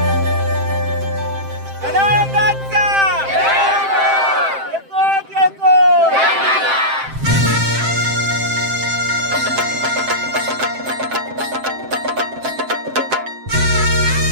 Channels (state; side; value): late; left; 7.6 ms